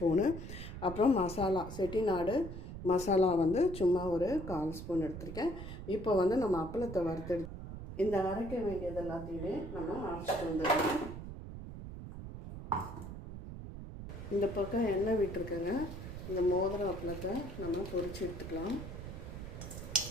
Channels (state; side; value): noise; right; rumble, 9 dB below the sound